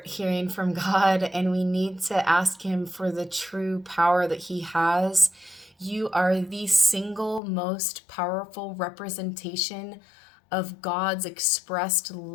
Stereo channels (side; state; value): right; drops out; at 7.4 s